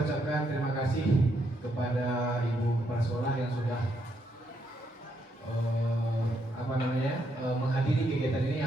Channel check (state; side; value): normal; both; correlation 0.77